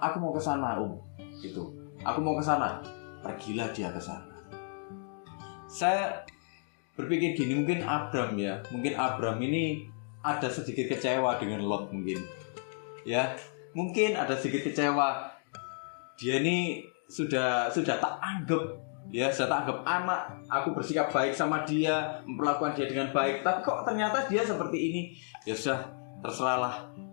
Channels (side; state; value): right; silent; 56 dB below the other